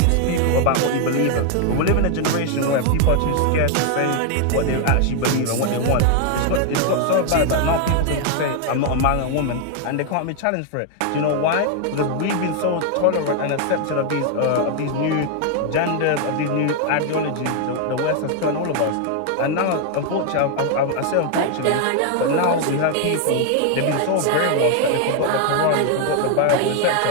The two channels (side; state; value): both; different; correlation 0.00